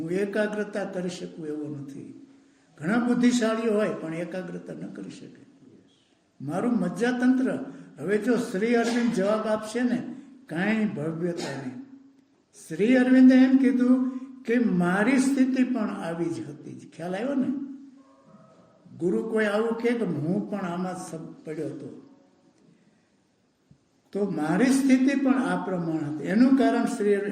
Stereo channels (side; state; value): both; identical; correlation 1.00